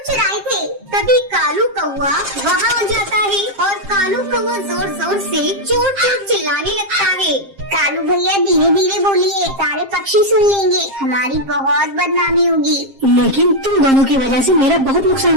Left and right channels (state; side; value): late; left; 7.5 ms